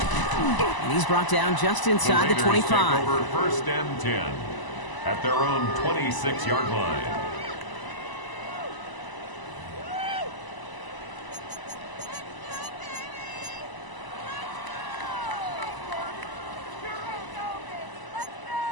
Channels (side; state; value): right; late; 1.0 ms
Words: he's brought down just inside the 25. Take over first and 10 at their own 26-yard line.